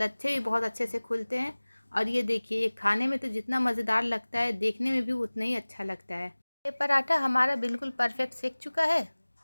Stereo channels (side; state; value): both; inverted; correlation -1.00